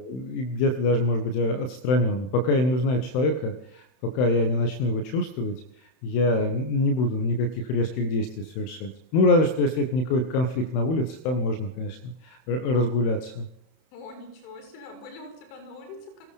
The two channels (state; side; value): late; right; 31 ms